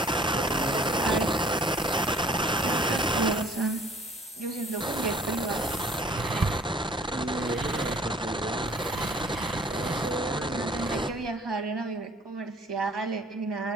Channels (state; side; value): normal; both; correlation 0.54